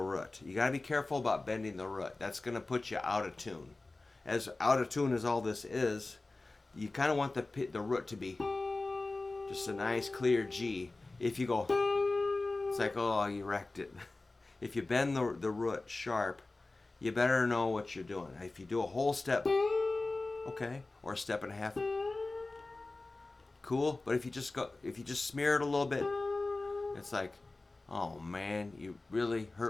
root. You got to be careful about bending the root. That's going to put you out of tune. As out of tune as all this is, you kind of want the root to be just a nice clear G. If you go, it's like, oh, you wrecked it. If you bend the root sharp, you better know what you're doing. If you do a whole step, okay, or a step and a half, cool. But if you just smear it a little bit, it's like, oh man, you really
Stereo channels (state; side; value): quieter; right; 3.2 dB